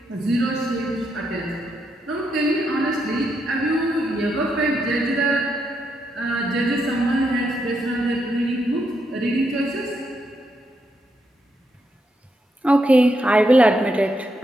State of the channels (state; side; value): normal; both; correlation 0.80